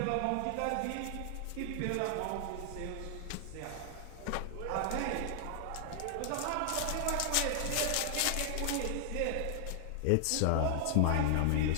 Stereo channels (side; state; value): both; different; correlation 0.00